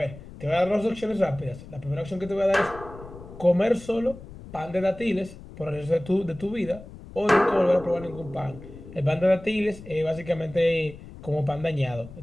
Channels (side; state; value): left; noise; rumble, 16 dB below the sound